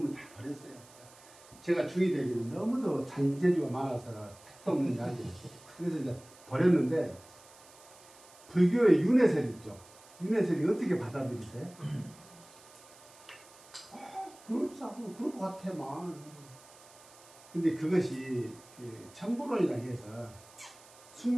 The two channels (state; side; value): noise; right; hiss, 23 dB below the sound